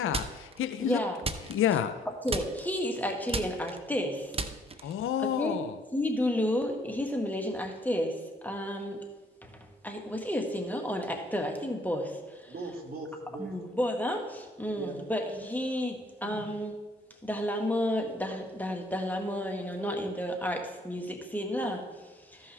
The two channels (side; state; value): both; normal; correlation 0.63